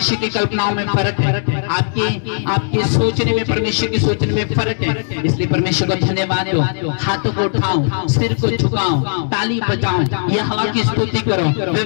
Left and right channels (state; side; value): silent; right; digital silence